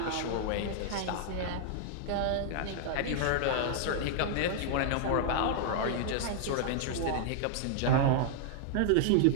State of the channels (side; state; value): both; different; correlation -0.01